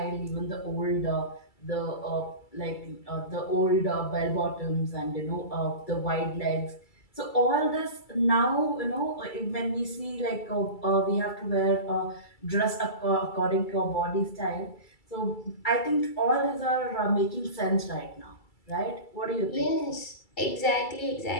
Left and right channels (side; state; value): right; late; 2.3 ms